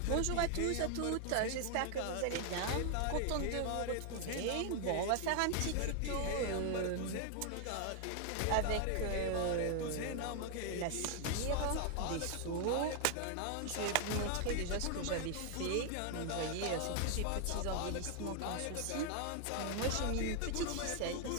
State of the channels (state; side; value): different; both; correlation 0.00